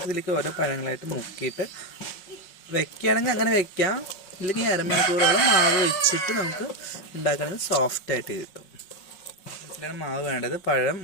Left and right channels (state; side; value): late; right; 5.5 ms